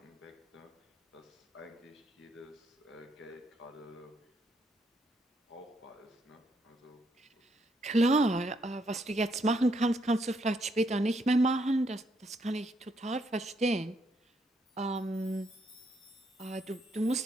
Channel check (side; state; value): both; normal; correlation 0.75